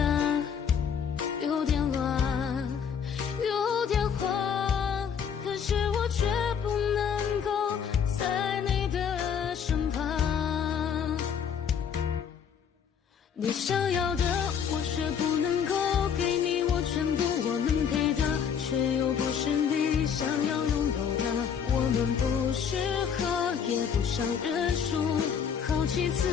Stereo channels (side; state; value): right; quieter; 7.4 dB